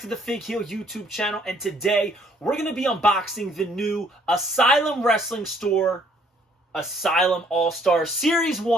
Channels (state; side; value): normal; both; correlation 0.63